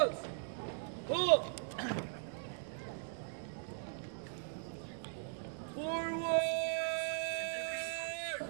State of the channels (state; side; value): silent; left; digital silence